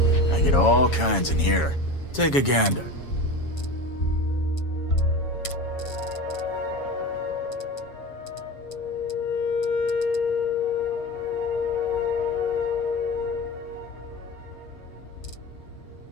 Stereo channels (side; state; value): right; late; 7.2 ms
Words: I get all kinds in here. Take a gander.